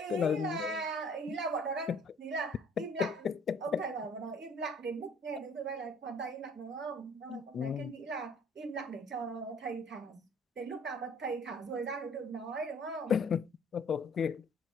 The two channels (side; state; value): both; normal; correlation 0.55